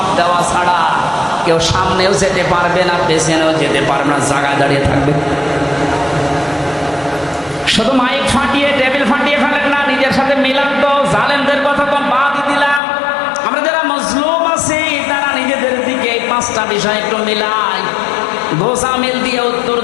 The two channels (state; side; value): drops out; right; at 12.8 s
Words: দেওয়া ছাড়া কেউ সামনেও যেতে পারবে না, পেছনেও যেতে পারবে না, জায়গায় দাঁড়িয়ে থাকবে। শুধু মাইক ফাটিয়ে টেবিল ফাটিয়ে ফেলেন না, নিজের সাথে মিলান তো। জালেমদের কথা তো বাদ দিলাম, আমরা যারা মজলুম আছি তারা নিজেদের দিকে এই 5টা বিষয় একটু মিলাই। গোসামিল দিয়ে উত্তর